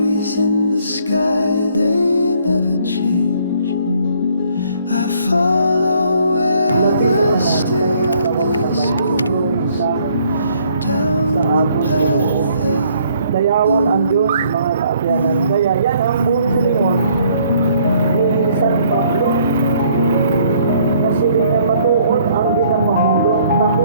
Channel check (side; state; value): both; inverted; correlation -0.63